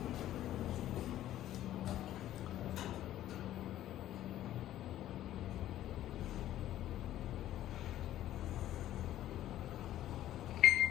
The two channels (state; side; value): quieter; right; 13.0 dB